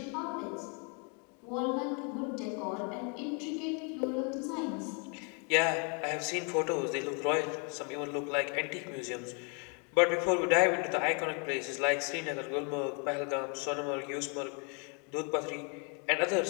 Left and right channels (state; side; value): quieter; right; 36.4 dB